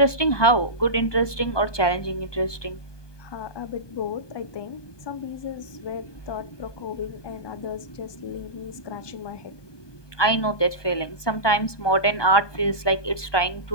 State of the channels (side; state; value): right; late; 1.2 ms